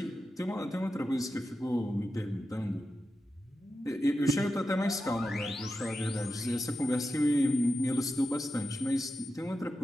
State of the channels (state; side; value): normal; both; correlation 0.90